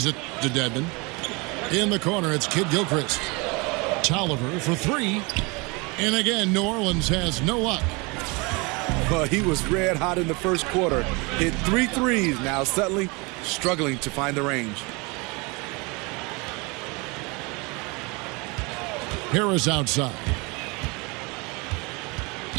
it to Dedmon. In the corner, it's Kidd-Gilchrist. Tolliver for 3. And again, New Orleans has no luck. Well, he was red hot in the first quarter. Hit 3 threes. Now suddenly struggling to find the range. Harris outside.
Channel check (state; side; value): quieter; left; 27.8 dB